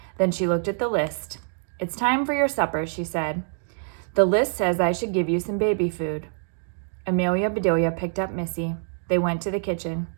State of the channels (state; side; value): silent; left; digital silence